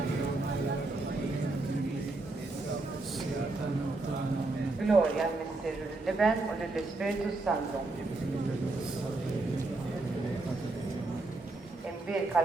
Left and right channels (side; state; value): left; quieter; 3.1 dB